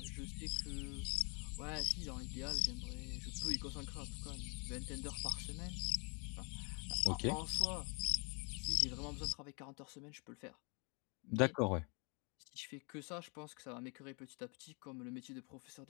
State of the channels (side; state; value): right; quieter; 33.8 dB